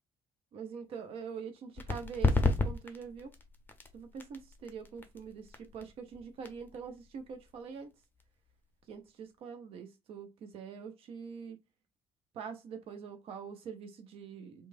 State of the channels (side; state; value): both; normal; correlation 0.71